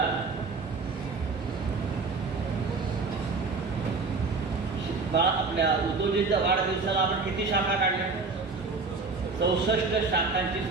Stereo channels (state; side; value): quieter; left; 4.2 dB